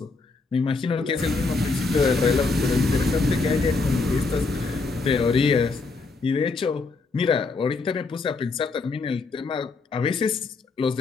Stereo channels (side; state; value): right; quieter; 4.0 dB